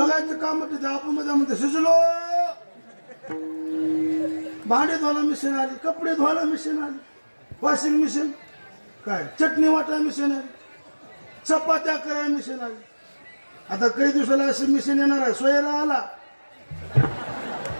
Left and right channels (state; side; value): inverted; both; correlation -1.00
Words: काम होते. आपण मध्ये शिजलो. भांडे धुवायला मिशन आली कपडे धुवायला मिशन आली वॉशिंग मिशन काय चटणी वाटायला मिशन आली चपात्या करायला मिशन आली. आता काही दिवसाला अशी मिशन येणार आहे. सोयरा आला